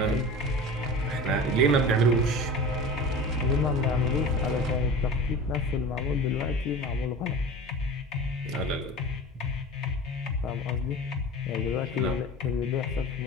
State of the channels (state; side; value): normal; both; correlation 0.34